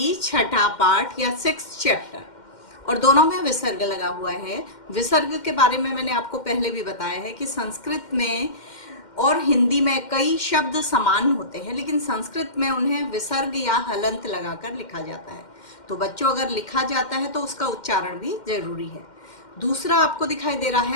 छठा पाठ या 6th चैप्टर, और दोनों में विसर्ग लगा हुआ है। विसर्ग के बारे में मैंने आपको पहले भी बताया है कि संस्कृत में और हिंदी में कई शब्द समान होते हैं, लेकिन संस्कृत में उन्हें विसर्ग या हलंत लगाकर लिखा जाता है। तो बच्चों, अगर लिखा जाता है तो उसका उच्चारण भी जरूरी है। दूसरा आपको दिखाई दे रहा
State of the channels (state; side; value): late; right; 2.1 ms